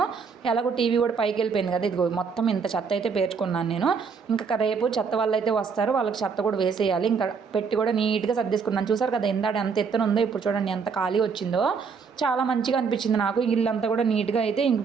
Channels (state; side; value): quieter; left; 5.6 dB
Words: ఎలాగో టీవీ కూడా పైకి వెళ్ళిపోయింది కదా, ఇదిగో మొత్తం ఇంత చెత్త అయితే పేర్చుకున్నాను నేను. ఇంకా రేపు చెత్త వాళ్ళు అయితే వస్తారు, వాళ్ళకి చెత్త కూడా వేసేయాలి. ఇంకా పెట్టి కూడా నీట్గా సర్దేసుకున్నాను. చూసారు కదా ఇందాడ ఎంత ఎత్తున ఉందో, ఇప్పుడు చూడండి ఎంత ఖాళీ వచ్చిందో. చాలా మంచిగా అనిపించింది నాకు. ఇల్లంతా కూడా నీట్గా అయితే ఇంక